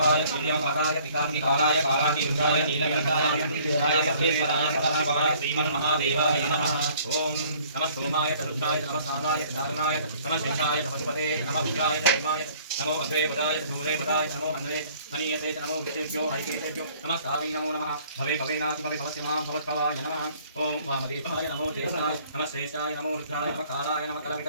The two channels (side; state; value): both; inverted; correlation -0.56